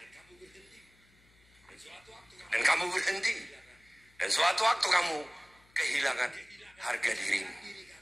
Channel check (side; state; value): left; noise; hum, 30 dB below the sound